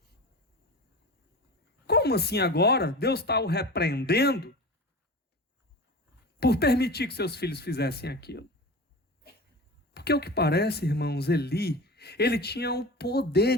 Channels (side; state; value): both; normal; correlation 0.32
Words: Como assim agora? Deus está o repreendendo por permitir que seus filhos fizessem aquilo. Porque o que parece, irmãos, Eli, ele tinha o poder